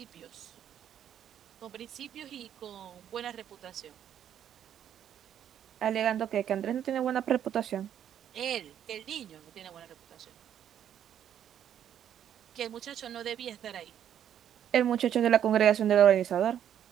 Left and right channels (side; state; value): left; quieter; 9.9 dB